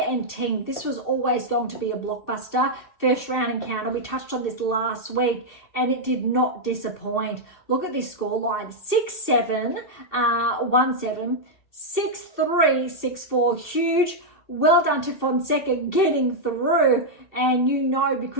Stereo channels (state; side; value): late; right; 2.6 ms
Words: and Ting. This was always going to be a blockbuster. First round encounter. We touched on this last week, and it did not disappoint. Look at this scoreline. 6-7, 1-7, 6-3, 6-4. Huge. Well done to Fonseca getting through, and you know,